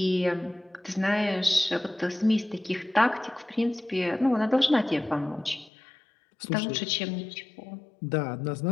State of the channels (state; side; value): drops out; right; at 5.7 s